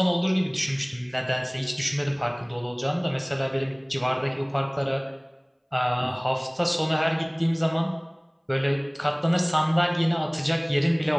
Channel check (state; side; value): identical; both; correlation 1.00